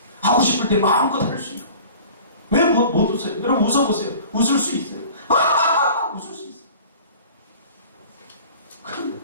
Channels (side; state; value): both; inverted; correlation -0.44